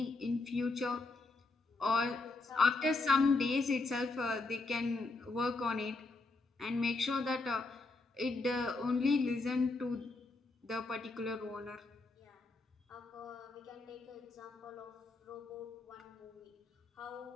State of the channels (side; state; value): right; quieter; 3.5 dB